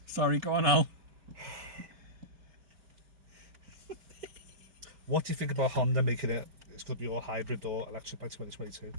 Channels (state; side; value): late; left; 5.3 ms